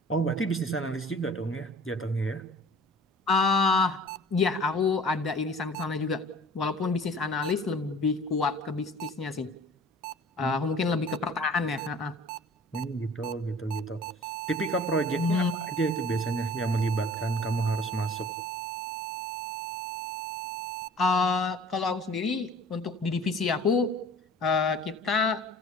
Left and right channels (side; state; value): both; normal; correlation 0.46